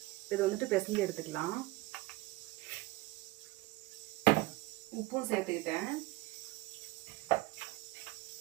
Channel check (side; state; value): left; quieter; 19.8 dB